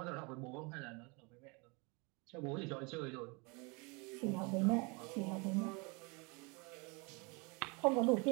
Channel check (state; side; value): quieter; left; 29.7 dB